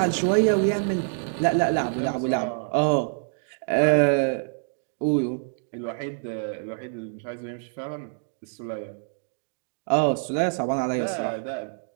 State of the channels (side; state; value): left; silent; digital silence